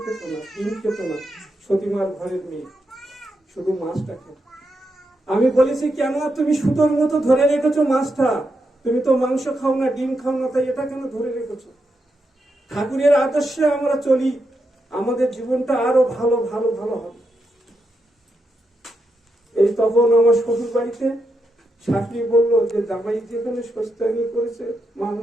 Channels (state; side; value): normal; both; correlation 0.84